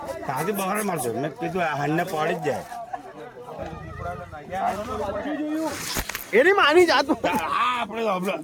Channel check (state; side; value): identical; both; correlation 1.00